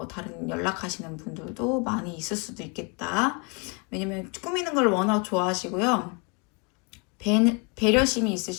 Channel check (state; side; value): quieter; right; 32.5 dB